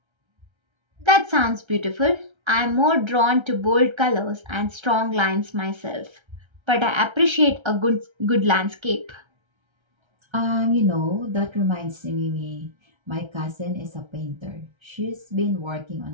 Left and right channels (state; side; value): late; left; 1.3 ms